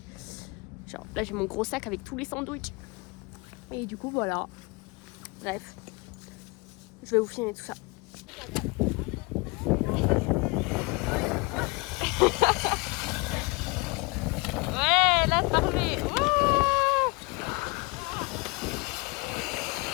Genre, là, j'ai mon gros sac avec tous les sandwichs. Et du coup, voilà. Bref. Je vais vous filmer tout ça. Ouais, là, c'est parfait. Wouh!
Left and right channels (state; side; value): quieter; right; 27.7 dB